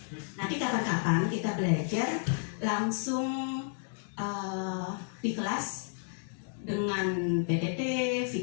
Nanti kapan-kapan kita belajar langsung di kelas dengan PPT,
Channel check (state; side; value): silent; right; 57 dB below the other